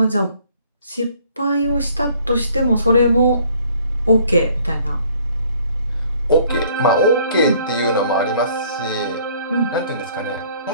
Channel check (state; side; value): inverted; both; correlation -0.59